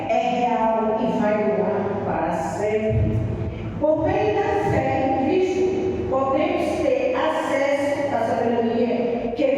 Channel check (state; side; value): identical; both; correlation 1.00